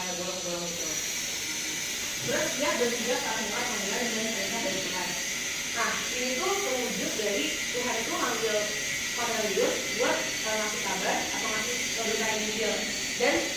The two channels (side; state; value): both; identical; correlation 1.00